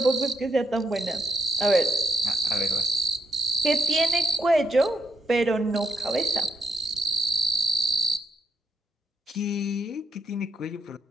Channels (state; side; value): normal; both; correlation 0.74